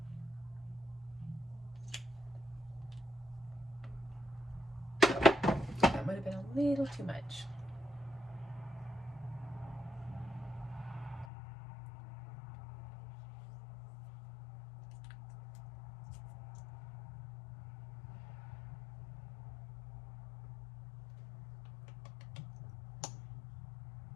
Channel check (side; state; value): right; drops out; at 11.3 s